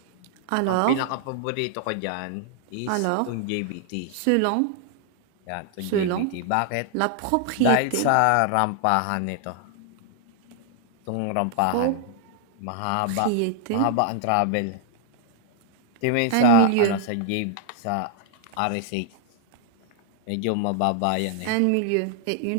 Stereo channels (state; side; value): different; both; correlation 0.00